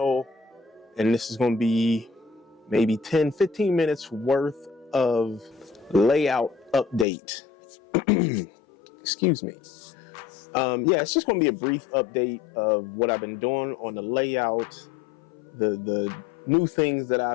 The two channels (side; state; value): right; drops out; at 7.1 s